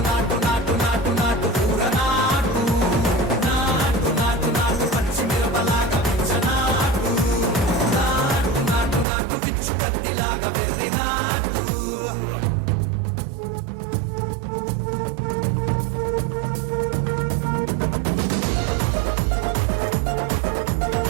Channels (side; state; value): left; drops out; at 9.1 s